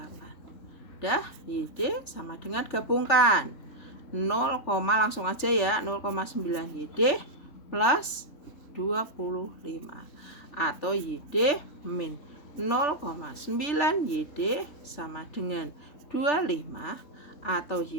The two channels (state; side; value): late; right; 3.4 ms